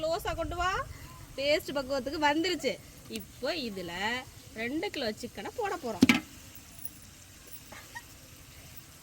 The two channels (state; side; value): identical; both; correlation 1.00